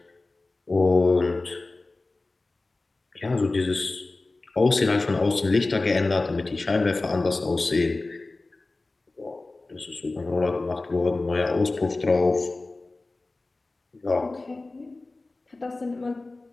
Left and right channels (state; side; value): quieter; right; 3.2 dB